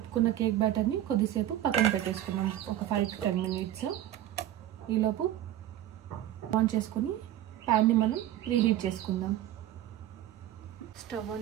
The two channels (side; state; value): left; quieter; 12.7 dB